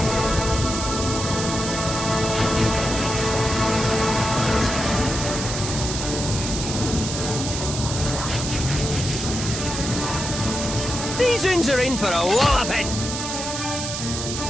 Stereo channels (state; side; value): noise; right; hiss, 5 dB below the sound